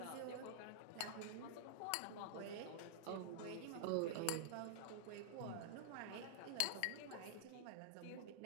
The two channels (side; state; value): both; different; correlation -0.01